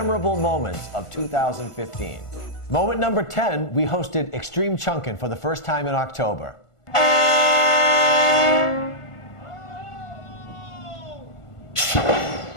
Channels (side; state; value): right; late; 1.5 ms